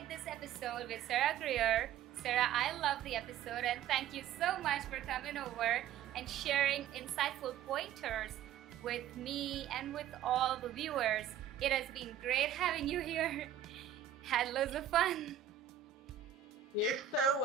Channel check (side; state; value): left; quieter; 10.0 dB